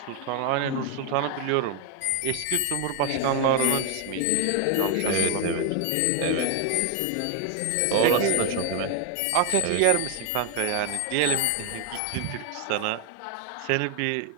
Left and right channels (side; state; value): both; different; correlation 0.01